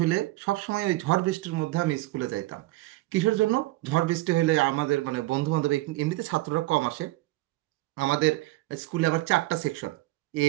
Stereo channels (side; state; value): left; quieter; 19.0 dB